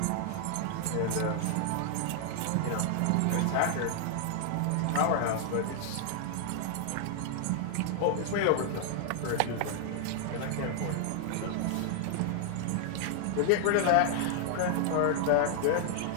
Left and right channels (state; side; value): different; both; correlation 0.00